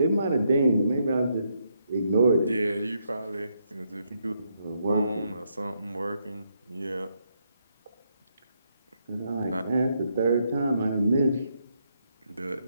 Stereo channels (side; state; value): both; inverted; correlation -0.77